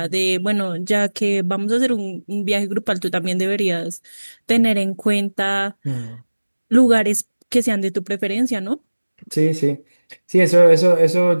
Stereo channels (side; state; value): both; inverted; correlation -1.00